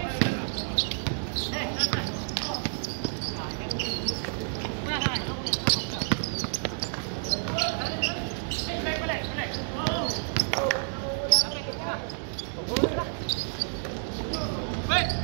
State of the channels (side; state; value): left; silent; digital silence